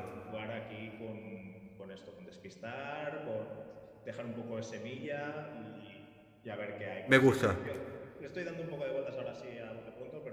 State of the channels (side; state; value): both; identical; correlation 1.00